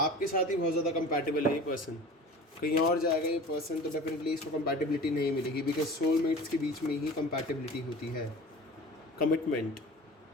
साथ ही बहुत ज़्यादा कंपैटिबल है ये पर्सन। कहीं और जाएगा ये पर्सन तो डेफिनेटली इसको कंपैटिबिलिटी नहीं मिलेगी, बिकॉज सोलमेट्स के बीच में ही कंपैटिबिलिटी होती है। कमिटमेंट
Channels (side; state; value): both; normal; correlation 0.39